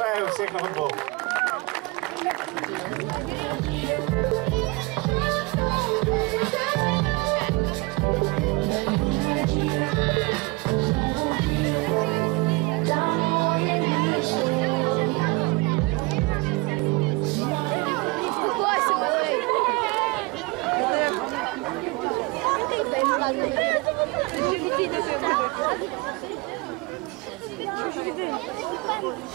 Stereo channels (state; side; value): quieter; left; 25.2 dB